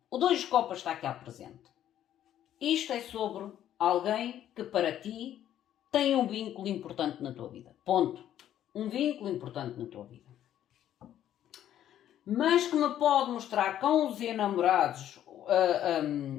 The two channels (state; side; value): quieter; right; 11.3 dB